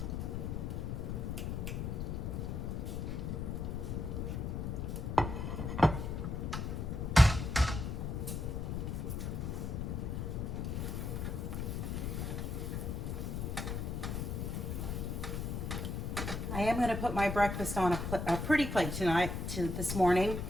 I am going to put my breakfast on a pretty plate this morning.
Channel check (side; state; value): left; noise; rumble, 2 dB below the sound